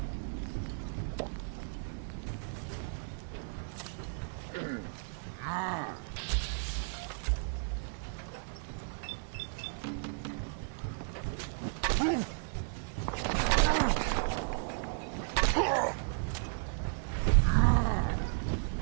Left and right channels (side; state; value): left; silent; digital silence